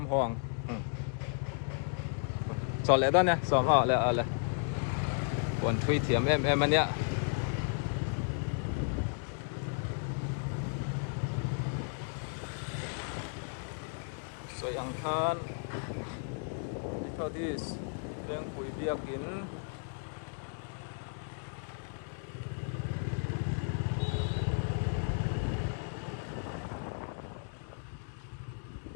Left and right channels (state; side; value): silent; right; 55 dB below the other